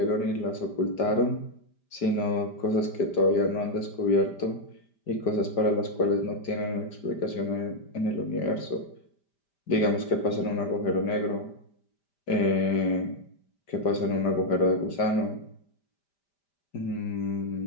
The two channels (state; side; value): late; right; 5.1 ms